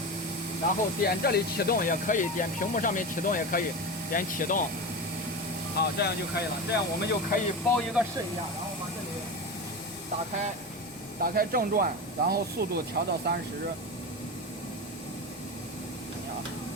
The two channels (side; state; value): both; normal; correlation 0.23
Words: 然后点这里启动也可以，点屏幕上面启动也可以，点启动，好，这样就可以了。这样我们就可以包一个试一下，然后把这里打开正转，然后速度调到30。啊，